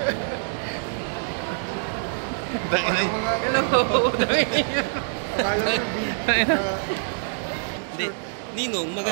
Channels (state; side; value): silent; left; digital silence